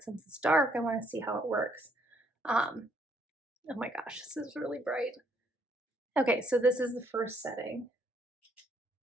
since it's dark, I want to see how it works. Oh my gosh, this is really bright. Okay, so this is the first setting.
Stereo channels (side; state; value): both; normal; correlation 0.69